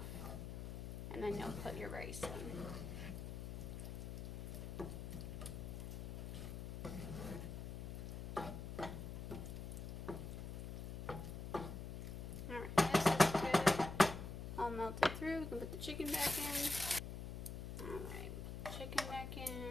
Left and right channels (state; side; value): noise; left; hum, 6 dB below the sound